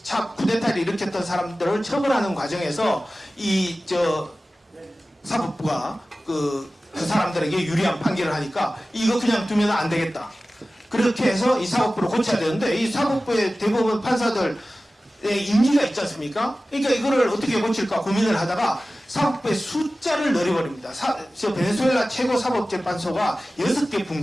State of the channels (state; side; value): normal; both; correlation 0.96